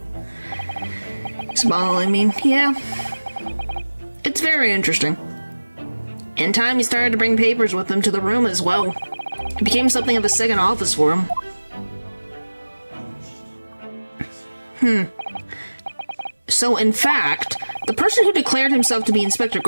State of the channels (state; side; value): inverted; both; correlation -1.00